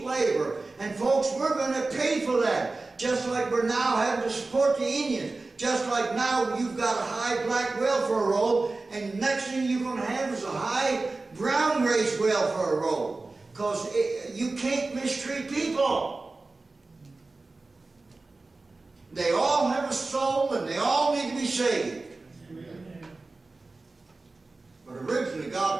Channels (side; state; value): left; quieter; 3.4 dB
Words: labor. And folks, we're going to pay for that. Just like we're now having to support the Indians. Just like now you've got a high black welfare roll, and next thing you're going to have is a high brown race welfare roll. Because you can't mistreat people. They all have a soul, and they all need to be saved. But originally